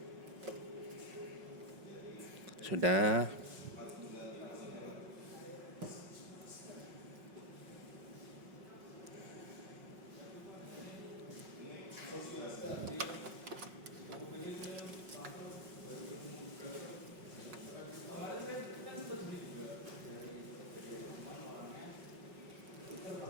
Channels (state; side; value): late; left; 5.4 ms